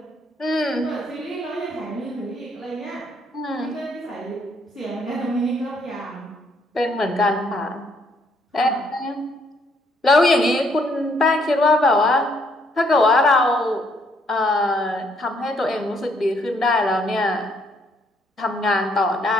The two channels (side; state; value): both; normal; correlation 0.69